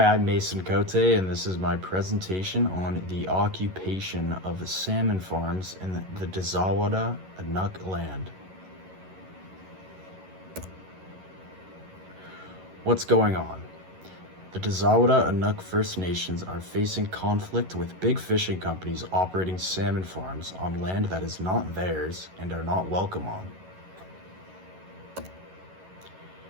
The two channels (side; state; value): left; late; 11 ms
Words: I'm Mason Cote, and this is my presentation on the occupation of salmon farms in the Dazawada Inuk land. What's going on? The Dazawada Inuk First Nations are facing conflict with big fishing companies operating salmon farms on land that is not theirs and are not welcome on.